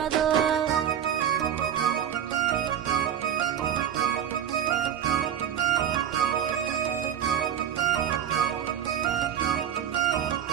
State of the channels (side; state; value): left; quieter; 9.7 dB